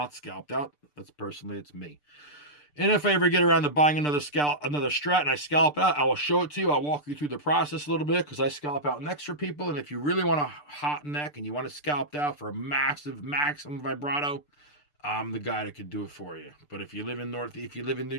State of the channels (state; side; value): late; right; 6.8 ms